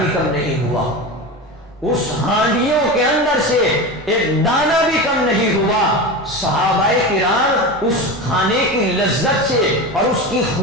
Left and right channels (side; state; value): both; normal; correlation 0.25